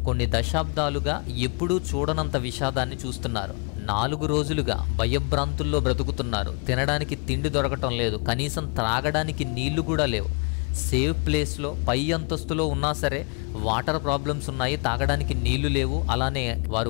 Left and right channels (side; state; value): right; quieter; 37.1 dB